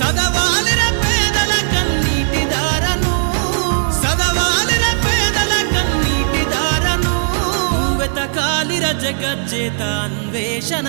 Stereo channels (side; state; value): left; silent; digital silence